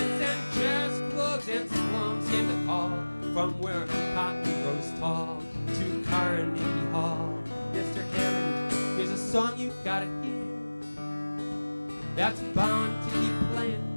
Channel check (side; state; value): both; inverted; correlation -1.00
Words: and jazz clubs and slums came the call, from where cotton grows tall to Carnegie Hall. "Mr. Hammond, here's a song you gotta hear, that's bound to keep playing